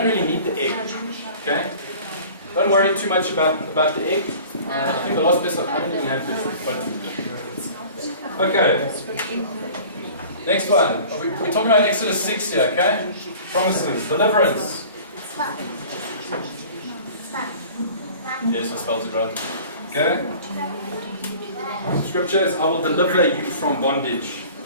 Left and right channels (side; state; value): both; inverted; correlation -0.44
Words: really need the egg. Okay? Don't worry too much about the egg. I think the last person I don't even have this. But okay. Next one. We're talking about Exodus 6 here, okay? Promises, deliverance. Yes, I spelled it right. Okay? Scripture is, I will deliver you from bondage.